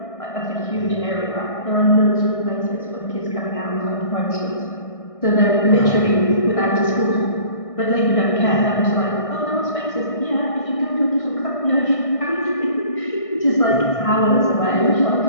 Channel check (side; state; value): right; late; 1.6 ms